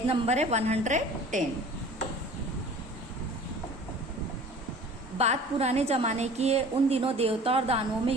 नंबर है 110। बात पुराने जमाने की है। उन दिनों देवता और दानवों में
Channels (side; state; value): both; normal; correlation 0.45